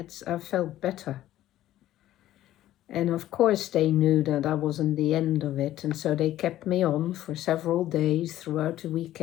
I felt better. And of course they knew that I wasn't the end of it, and so they kept me on for several days throughout the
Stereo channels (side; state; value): right; quieter; 13.7 dB